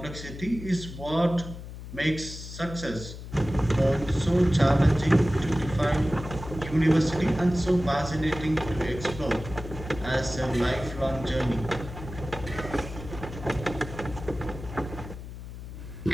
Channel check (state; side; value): noise; left; hum, 11 dB below the sound